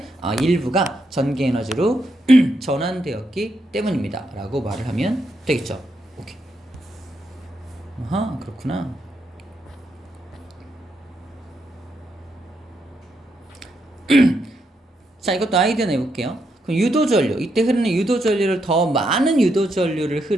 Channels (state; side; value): normal; both; correlation 0.80